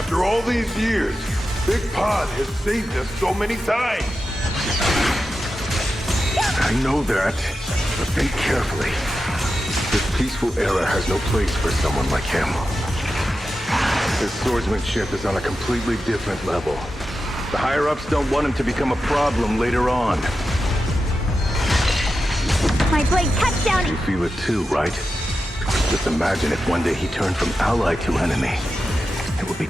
all these years, Big Pod has saved us so many times. I know that, but think carefully. This peaceful era has no place for someone like him. His swordsmanship is on a completely different level. The higher-ups don't want him to become a problem later on. My blade cuts down. You feel it too, right? Just imagine if one day he turned from ally to enemy. It would be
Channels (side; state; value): both; normal; correlation 0.91